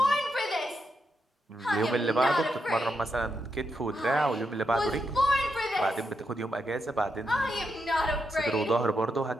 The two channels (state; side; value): normal; both; correlation 0.83